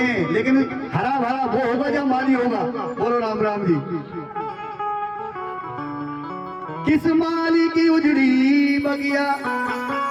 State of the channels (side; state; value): both; identical; correlation 1.00